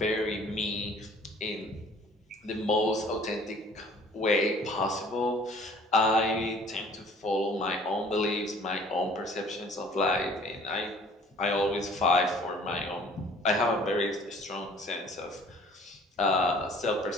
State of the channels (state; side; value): normal; both; correlation 0.52